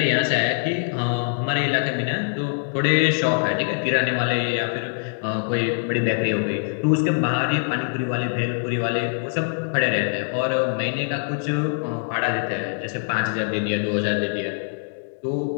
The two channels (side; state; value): right; silent; digital silence